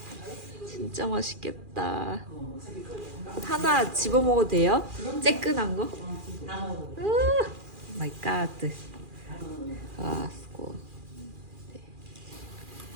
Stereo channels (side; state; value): left; late; 2.4 ms